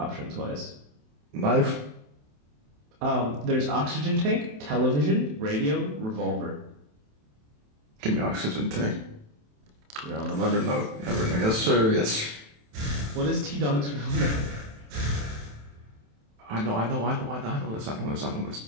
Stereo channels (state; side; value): late; left; 27 ms